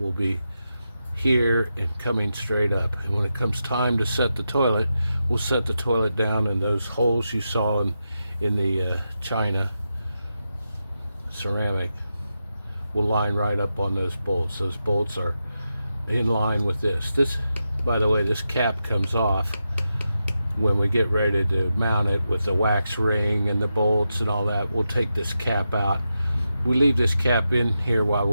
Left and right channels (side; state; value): both; inverted; correlation -0.88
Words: be here and coming straight up. And when it comes time to set the toilet, we'll set the toilet down, and those holes you saw in the china ceramic will line right up on those bolts. Those bolts are in line with this. This, by the way, this cap comes off when we get ready to mount it with the wax ring and the bolts and all that. We'll take this cap out. We leave this cap in here while